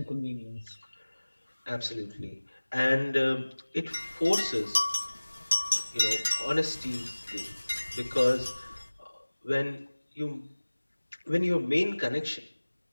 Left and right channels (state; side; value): inverted; both; correlation -1.00